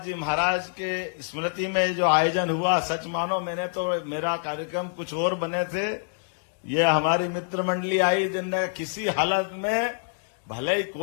जी महाराज के स्मृति में जो आयोजन हुआ, सच मानो मैंने तो, मेरा कार्यक्रम कुछ और बने थे, ये हमारी मित्र मंडली आई जिनने किसी हालत में, भले ही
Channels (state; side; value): silent; right; digital silence